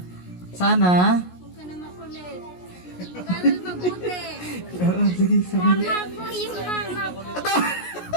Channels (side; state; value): right; late; 17 ms